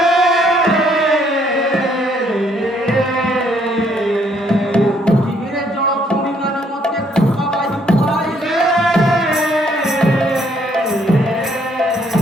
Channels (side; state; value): both; normal; correlation 0.67